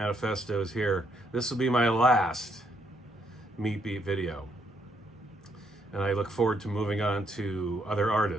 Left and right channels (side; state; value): both; normal; correlation 0.73